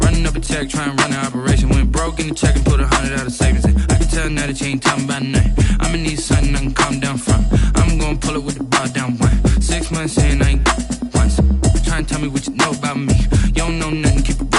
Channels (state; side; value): identical; both; correlation 1.00